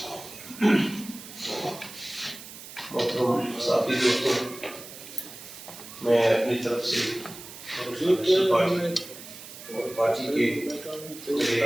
محترم صحافی دوستوں، میں اپنی طرف سے پارٹی کے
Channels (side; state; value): right; noise; hiss, 14 dB below the sound